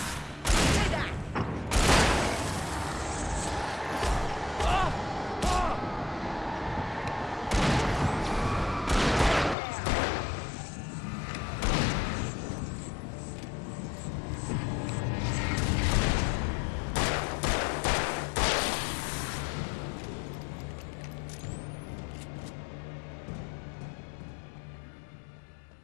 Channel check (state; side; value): drops out; right; at 9.6 s